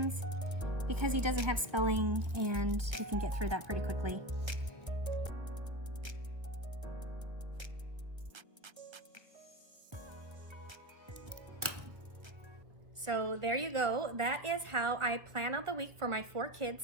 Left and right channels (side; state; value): left; late; 1.5 ms